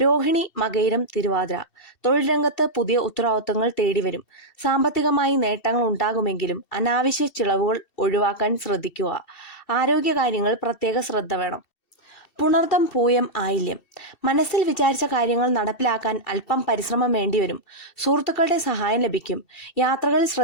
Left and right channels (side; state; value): right; late; 2.7 ms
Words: രോഹിണി, മകയിരം, തിരുവാതിര തൊഴിൽ രംഗത്ത് പുതിയ ഉത്തരവാദിത്തങ്ങൾ തേടിവരും. സാമ്പത്തികമായി നേട്ടങ്ങൾ ഉണ്ടാകുമെങ്കിലും അനാവശ്യ ചിലവുകൾ ഒഴിവാക്കാൻ ശ്രദ്ധിക്കുക. ആരോഗ്യകാര്യങ്ങൾ പ്രത്യേക ശ്രദ്ധ വേണം. പുണർദം, പൂയം, ആയില്യം മനസ്സിൽ വിചാരിച്ച കാര്യങ്ങൾ നടപ്പിലാക്കാൻ അല്പം പരിശ്രമം വേണ്ടിവരും. സുഹൃത്തുക്കളുടെ സഹായം ലഭിക്കും. യാത്രകളിൽ